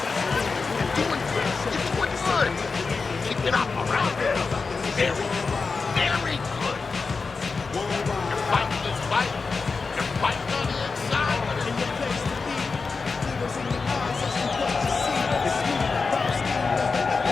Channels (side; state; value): right; quieter; 4.5 dB